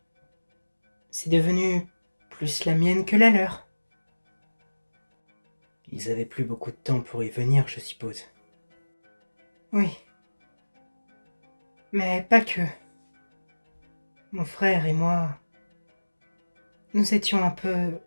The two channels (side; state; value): both; inverted; correlation -1.00